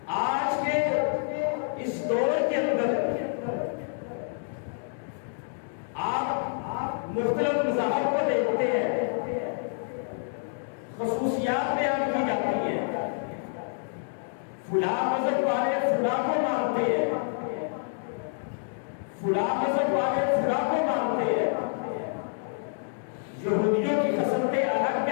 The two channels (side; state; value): right; silent; digital silence